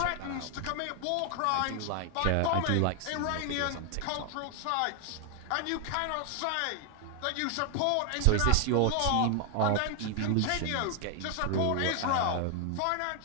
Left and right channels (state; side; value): different; both; correlation 0.00